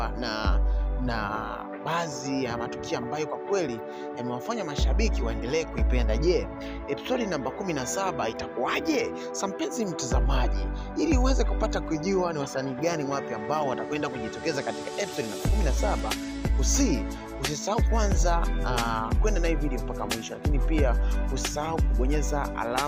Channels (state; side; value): identical; both; correlation 1.00